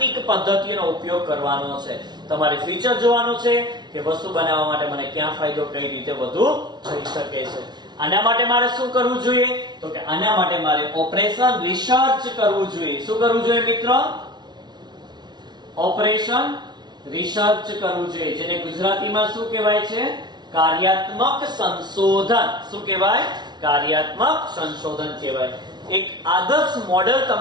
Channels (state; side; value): late; left; 0.20 ms